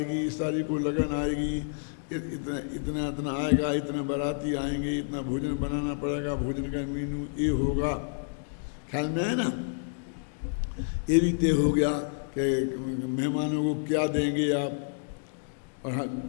इस तारीख को लगन आएगी, इतना इतना इतना आएगा, इतने बाराती आएंगे, इतना भोजन बनाना पड़ेगा, भोजन का मेनू ये होगा, ख्याल में है ना? ये भी तय हो गया कि मेहमानों को क्या देंगे आप, और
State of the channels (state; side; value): silent; right; digital silence